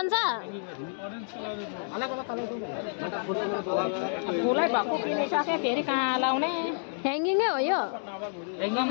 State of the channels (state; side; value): silent; right; digital silence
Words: अलग अलग कलर फुलै भएको किनिसके फेरि कहाँ लाउने ह्याङ्गिङै हो यो